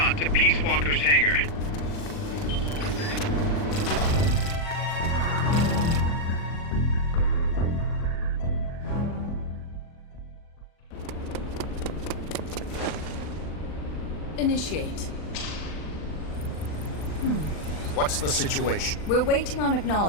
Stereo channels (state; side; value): late; right; 40 ms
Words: to Peace Walker's hangar. Initiate. What's the situation? We're waiting on